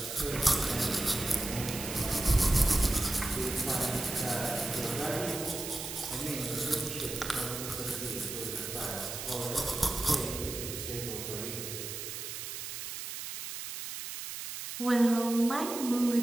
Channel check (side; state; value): right; noise; hiss, 7 dB below the sound